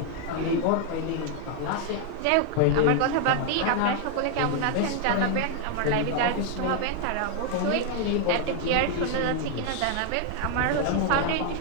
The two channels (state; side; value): different; both; correlation 0.00